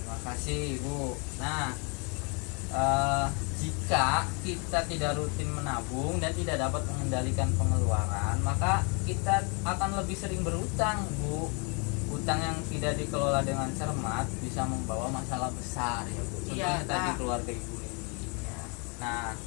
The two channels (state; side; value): quieter; right; 33.5 dB